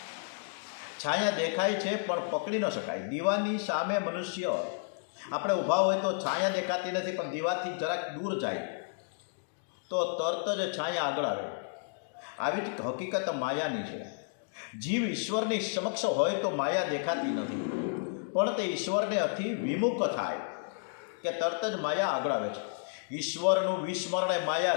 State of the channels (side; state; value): right; silent; digital silence